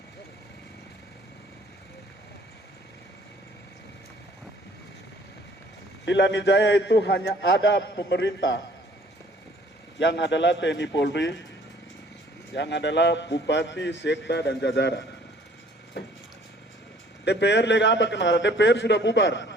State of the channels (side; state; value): both; normal; correlation 0.56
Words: Di Lani Jaya itu hanya ada pemerintah yang adalah TNI Polri, yang adalah Bupati, Sekda, dan jajaran. DPR lega apa kenara? DPR sudah